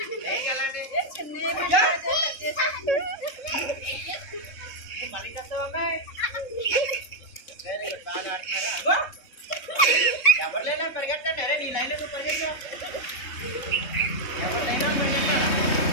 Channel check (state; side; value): late; right; 3.6 ms